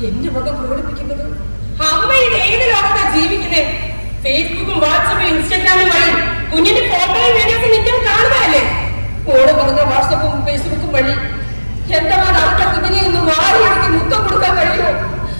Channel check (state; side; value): inverted; both; correlation -1.00